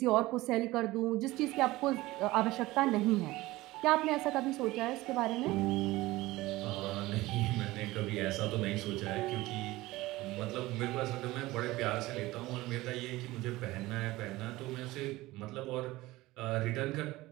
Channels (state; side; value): quieter; left; 18.8 dB